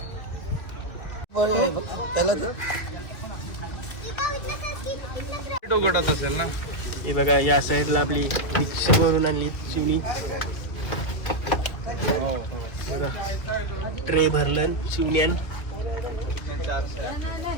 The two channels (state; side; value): late; right; 2.2 ms